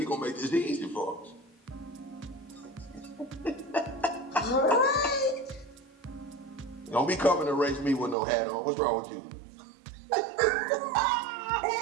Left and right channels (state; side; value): drops out; left; at 8.2 s